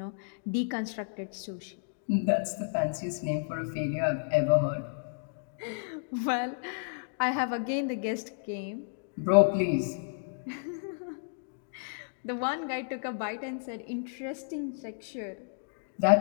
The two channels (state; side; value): silent; right; digital silence